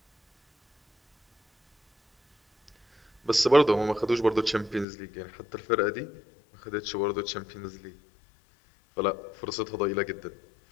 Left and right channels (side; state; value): right; drops out; at 4.9 s